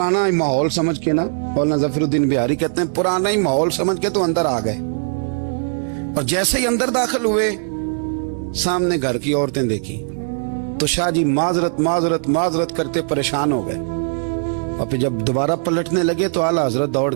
ہی ماحول سمجھ کے نا، مولانا ظفر الدین بہاری کہتے ہیں پرانا ہی ماحول سمجھ کے تو اندر آ گئے، اور جیسے ہی اندر داخل ہوئے سامنے گھر کی عورتیں دیکھی تو شاہ جی معذرت معذرت معذرت کرتے پریشان ہو گئے، اور پھر جب دوبارہ پلٹنے لگے تو اعلیٰ حضرت دوڑ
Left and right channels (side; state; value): left; silent; digital silence